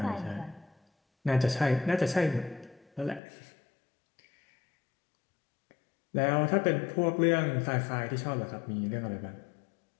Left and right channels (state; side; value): drops out; right; at 3.2 s